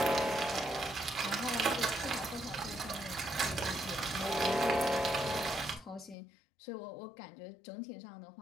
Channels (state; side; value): drops out; right; at 6.2 s